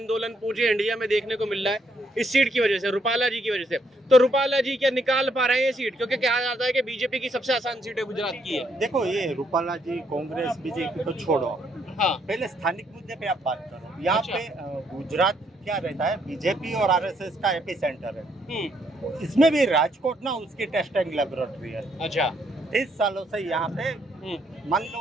पूरे इंडिया में देखने को मिल रहा है इस सीट की वजह से, रूपाला जी की वजह से। तो रूपाला जी क्या निकाल पा रहे हैं ये सीट? क्योंकि कहा जाता है कि बीजेपी की सबसे आसान सीट है गुजरात की है। देखो, ये रूपाला जी कांग्रेस बीजेपी को छोड़ो, हाँ, पहले स्थानिक मुद्दे पे आप बात करो। यहाँ अच्छा। पे गुजरात क्या रहता है, बीजेपी और RSS का एपी सेंटर है। हम्म, इसमें भी राजकोट ना उसकी टेस्टिंग लेबोरेटरी है। अच्छा। 30 सालों से यहाँ पे मान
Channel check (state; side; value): normal; both; correlation 0.72